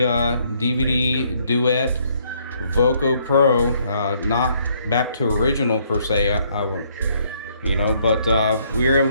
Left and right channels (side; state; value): both; inverted; correlation -0.68